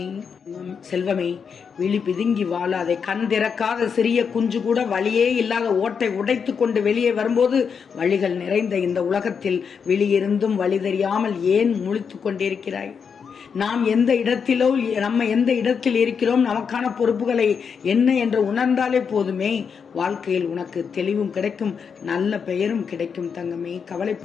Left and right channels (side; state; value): right; quieter; 6.4 dB